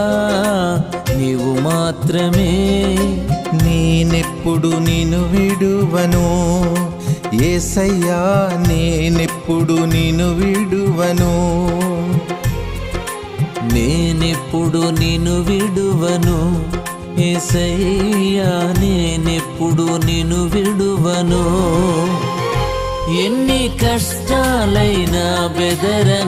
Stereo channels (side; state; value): both; identical; correlation 1.00